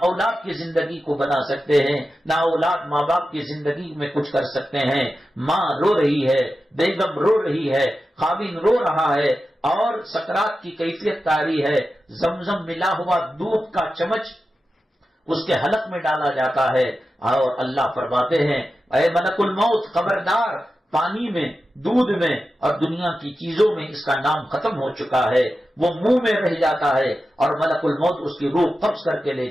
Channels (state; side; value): normal; both; correlation 0.92